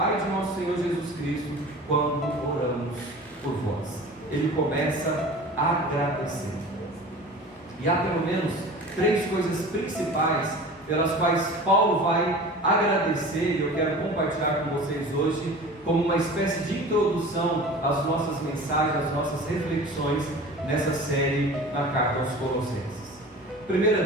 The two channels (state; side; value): normal; both; correlation 0.38